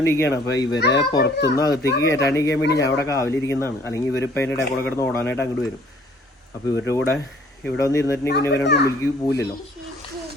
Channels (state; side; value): normal; both; correlation 0.57